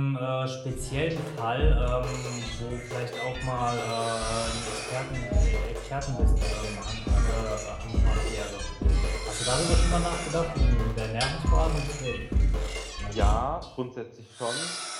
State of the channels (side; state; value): both; identical; correlation 1.00